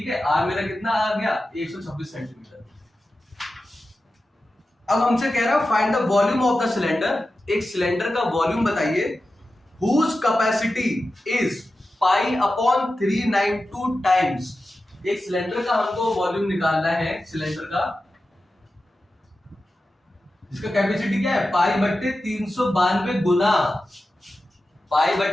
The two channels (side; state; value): both; normal; correlation 0.93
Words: है। R मेरा कितना आ गया, 126 सेंटीमीटर। अब हमसे कह रहा है find the volume of the cylinder. एक सिलेंडर का वॉल्यूम बताइए, whose capacity is pi upon 392 times. एक सिलेंडर का हमको वॉल्यूम निकालना है, सिलेंडर का जिसका कैपेसिटी क्या है, पाई बट्टे 392 गुना, पाई